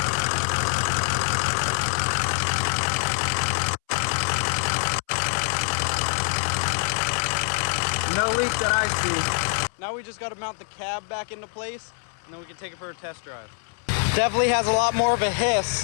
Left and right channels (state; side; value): silent; right; 62 dB below the other